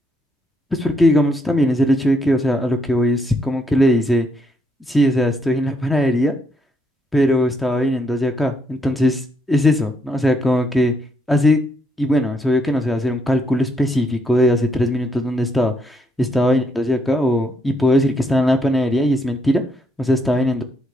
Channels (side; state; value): both; normal; correlation 0.75